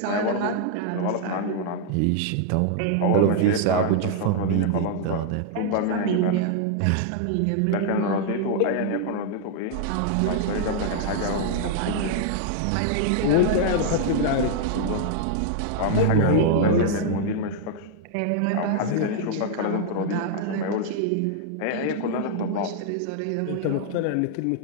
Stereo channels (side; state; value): both; different; correlation -0.01